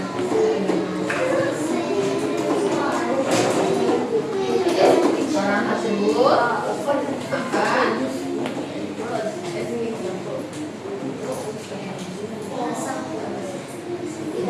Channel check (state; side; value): identical; both; correlation 1.00